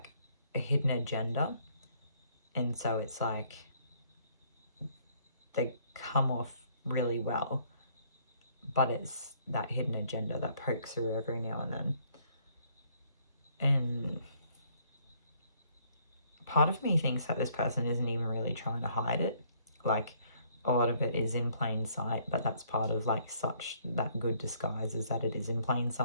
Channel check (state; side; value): inverted; both; correlation -0.65